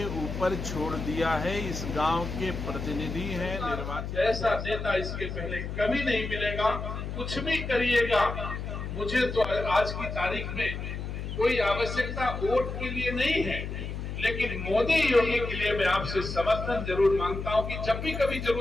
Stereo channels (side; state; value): left; noise; hum, 6 dB below the sound